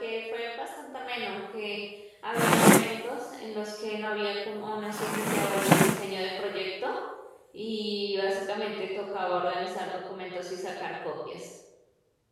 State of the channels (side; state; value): both; identical; correlation 1.00